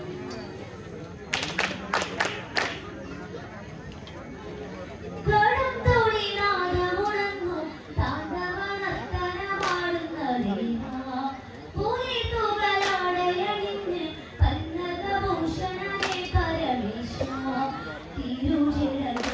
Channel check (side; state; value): both; identical; correlation 1.00